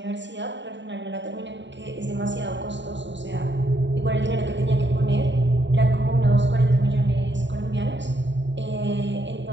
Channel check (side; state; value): left; late; 0.52 ms